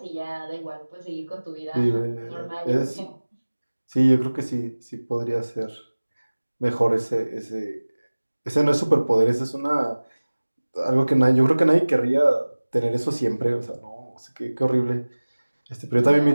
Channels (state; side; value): inverted; both; correlation -1.00